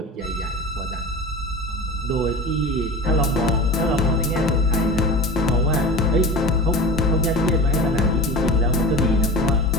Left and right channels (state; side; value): normal; both; correlation 0.34